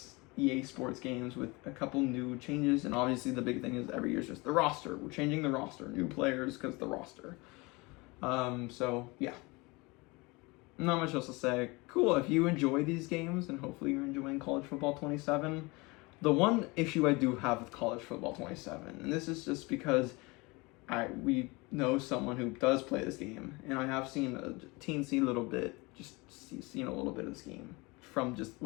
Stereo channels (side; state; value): right; quieter; 25.2 dB